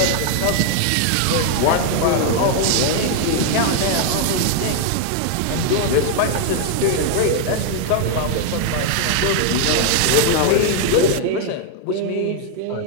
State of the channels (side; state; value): both; different; correlation 0.00